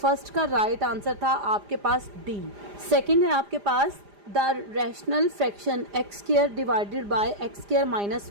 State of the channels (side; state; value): left; late; 4.9 ms